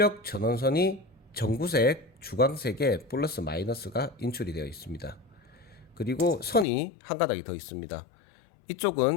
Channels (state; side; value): drops out; right; at 6.7 s